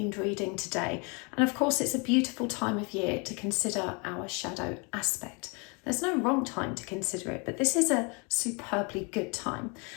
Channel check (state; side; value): quieter; right; 31.9 dB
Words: reading today. And of course, it's a beautiful time of year to consider our shadow aspect. There's no wrong time to consider it, but this is a superbly good time.